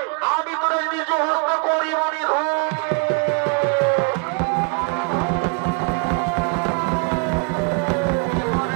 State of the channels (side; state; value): left; quieter; 34.0 dB